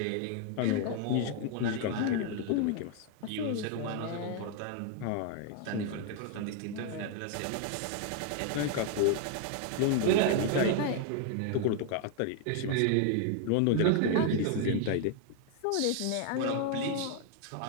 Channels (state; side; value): different; both; correlation 0.00